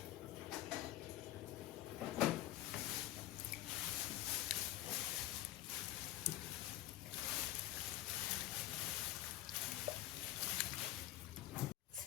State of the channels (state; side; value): quieter; right; 15.1 dB